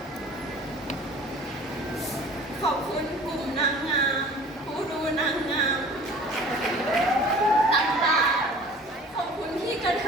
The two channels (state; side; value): normal; both; correlation 0.45